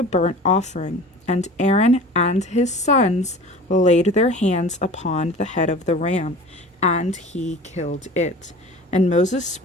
burnt offering, and Aaron and his sons laid their hands upon the head of the ram, and he killed it. And Moses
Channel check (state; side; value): normal; both; correlation 0.40